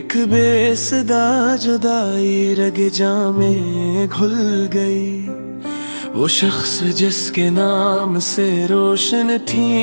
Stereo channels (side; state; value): both; inverted; correlation -1.00